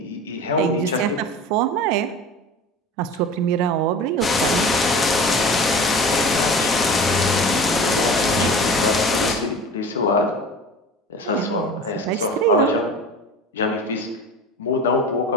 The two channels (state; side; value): normal; both; correlation 0.37